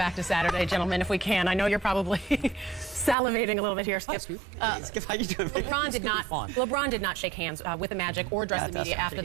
to Saturday, gentlemen, if we can. I know you're probably salivating a little bit here, Skip. Skip, how you doing? LeBron did not shake hands with the Magic or address the media after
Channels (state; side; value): drops out; left; at 3.2 s